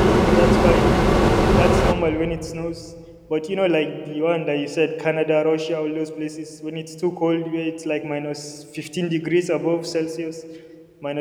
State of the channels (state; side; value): identical; both; correlation 1.00